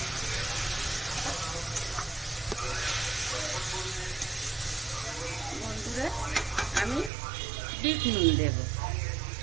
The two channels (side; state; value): left; drops out; at 7.1 s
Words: বন্ধুরা, আমি বিট নুন দেব।